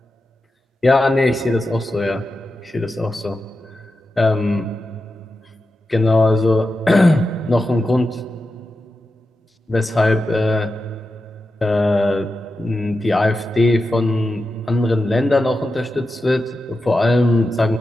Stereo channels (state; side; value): normal; both; correlation 0.90